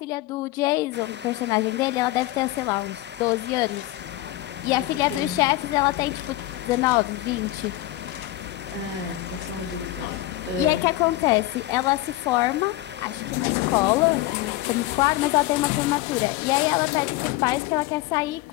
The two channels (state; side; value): quieter; right; 16.6 dB